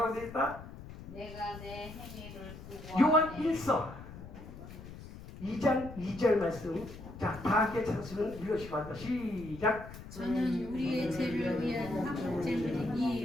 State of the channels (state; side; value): noise; left; rumble, 13 dB below the sound